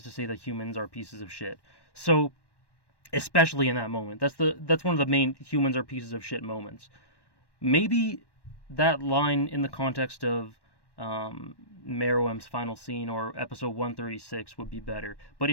to say that humans are pieces of shit. So especially in that moment, that's one of the main humans are pieces of shit moments. Maybe that line in the context of Meruem's final scene or episode 136 would be better. But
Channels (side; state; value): right; late; 1.1 ms